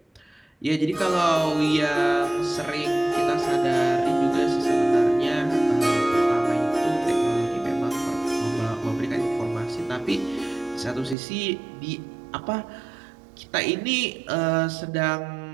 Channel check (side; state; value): left; drops out; at 11.2 s